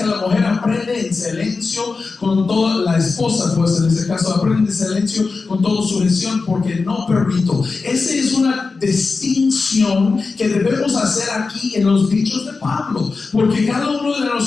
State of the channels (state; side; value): quieter; right; 4.2 dB